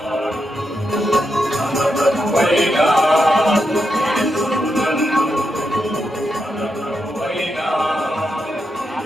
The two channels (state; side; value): normal; both; correlation 0.84